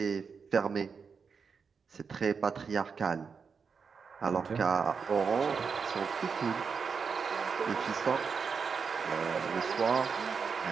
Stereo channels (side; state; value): left; quieter; 5.7 dB